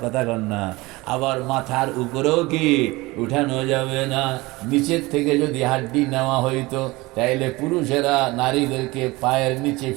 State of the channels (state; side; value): quieter; left; 21.8 dB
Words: কথা কন না। আবার মাথার উপরেও কি উঠানো যাবে না। নিচের থেকে যদি হাড্ডি নেওয়া হইতো তাইলে পুরুষেরা নারীদেরকে পায়ের নিচে